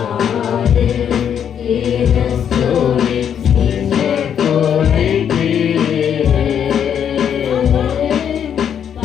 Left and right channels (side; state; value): right; quieter; 8.6 dB